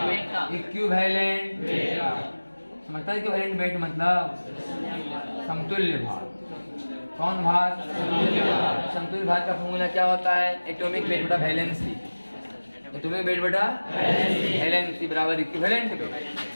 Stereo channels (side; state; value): both; inverted; correlation -1.00